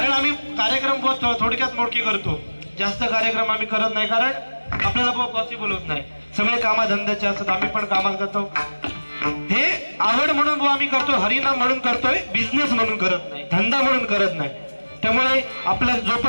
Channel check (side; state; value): both; inverted; correlation -1.00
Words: आम्ही कार्यक्रम थोडक्यात मोडके करतो, जास्त कार्यक्रम आम्ही करत नाही, कारण आपल्याला पॉसिबल होत नाही. सगळे कामाधंद्याचे असतात, आम्ही पण कामात जातो. हे आवड म्हणून आम्ही करतो, हरिनाम म्हणून करतोय, बिझनेस म्हणून करत नाही, धंदा म्हणून करत नाही. त्यामुळे आपल्या